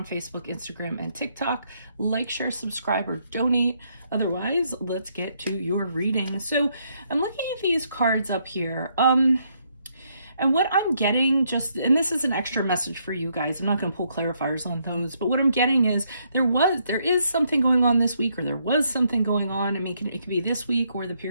Facebook, Instagram, and TikTok. Like, share, subscribe, or donate. Otherwise, let's get to your reading. So I'm looking at these cards up here. And what I'm getting and this is an extra message for you guys. I'm not going to pull clarifiers on those, but what I'm getting is there is something going on this week, or there was something going on. I mean, it could be this week or the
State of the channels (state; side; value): inverted; both; correlation -0.74